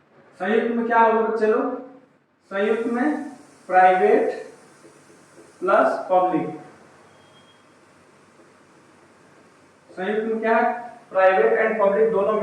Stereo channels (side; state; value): both; identical; correlation 1.00